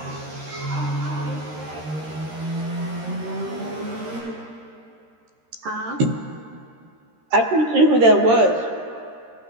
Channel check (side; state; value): left; late; 13 ms